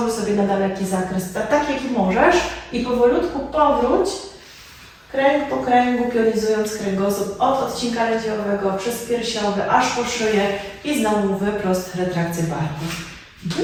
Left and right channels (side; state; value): both; identical; correlation 1.00